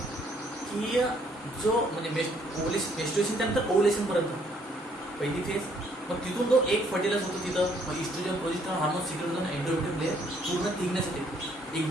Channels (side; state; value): both; normal; correlation 0.66